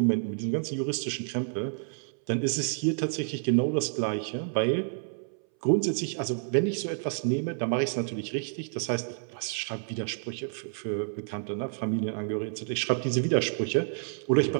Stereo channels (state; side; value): silent; left; 58 dB below the other